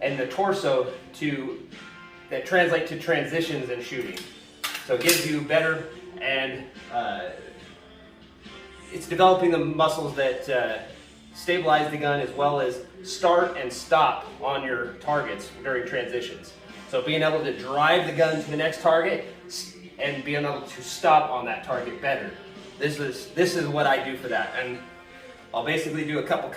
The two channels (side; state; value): both; identical; correlation 1.00